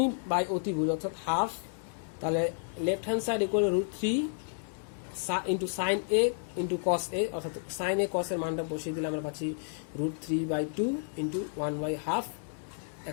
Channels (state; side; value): silent; right; 57 dB below the other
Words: বাই অতিভুজ অর্থাৎ হাফ। তাহলে left hand side equal to √3 into sine A into cos A অর্থাৎ সাইন এ কস এর মানটা বসিয়ে দিলে আমরা পাচ্ছি √3/2 ইন্টু 1/2।